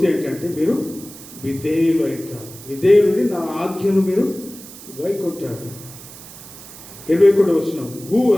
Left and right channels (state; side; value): noise; right; hiss, 17 dB below the sound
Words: ఏంటంటే మీరు విధేయులు అవుతారు. విధేయులని నా ఆజ్ఞను మీరు గైకొంటారు. 21వ వచనం, who